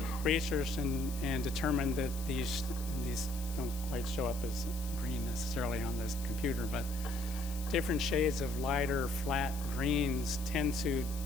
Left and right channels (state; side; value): noise; left; hiss, 13 dB below the sound